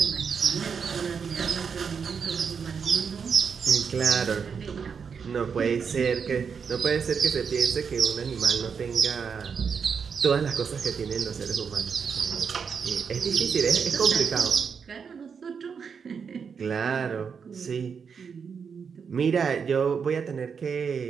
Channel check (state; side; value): quieter; left; 6.3 dB